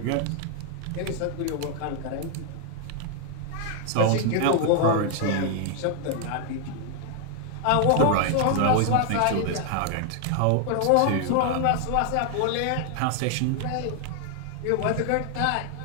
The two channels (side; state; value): both; different; correlation 0.00